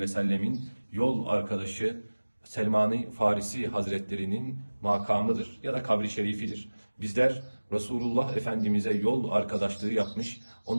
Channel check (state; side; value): inverted; both; correlation -1.00